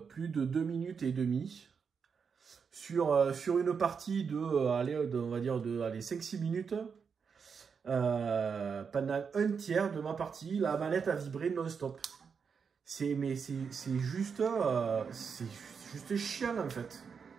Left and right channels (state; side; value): quieter; left; 6.1 dB